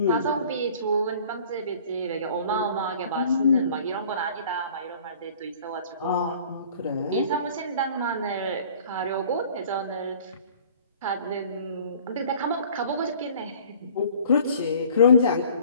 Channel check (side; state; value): both; inverted; correlation -0.50